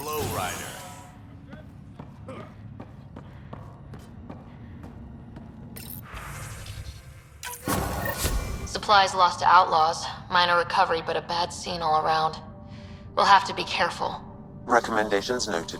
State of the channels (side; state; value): both; identical; correlation 1.00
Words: Ryder. Supplies lost to outlaws. Minor recovery, but a bad scene all around. We'll have to be careful. Recommendations noted,